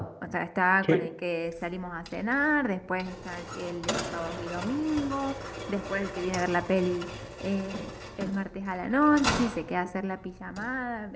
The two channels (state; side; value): identical; both; correlation 1.00